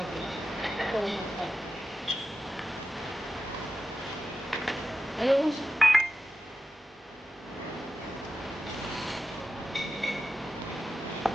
rin. Ito mo pa. Ayun.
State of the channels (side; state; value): both; normal; correlation 0.92